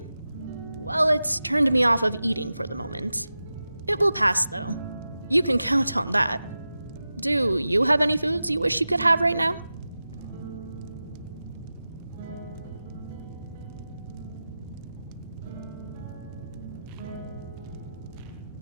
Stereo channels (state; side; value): inverted; both; correlation -0.93